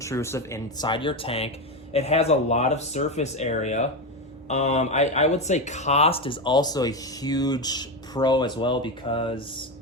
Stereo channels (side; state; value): both; normal; correlation 0.13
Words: inside your tank. It has a lot of surface area. I would say cost is also a huge pro as well, because